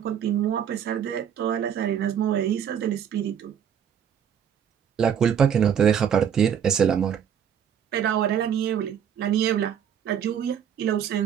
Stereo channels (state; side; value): quieter; left; 8.5 dB